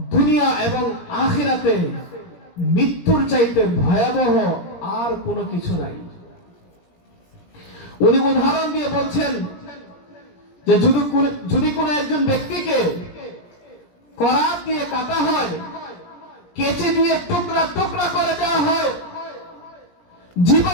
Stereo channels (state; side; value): late; right; 17 ms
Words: দুনিয়া এবং আখিরাতে মৃত্যুর চাইতে ভয়াবহ আর কোনো কিছু নাই। উনি উদাহরণ দিয়ে বলছেন যে যদি কোনো একজন ব্যক্তিকে করাত দিয়ে কাটা হয়, কেচে দিয়ে টুকরা টুকরা করে দেওয়া হয়,